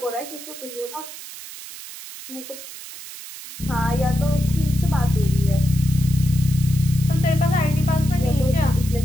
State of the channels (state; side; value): noise; right; hiss, 13 dB below the sound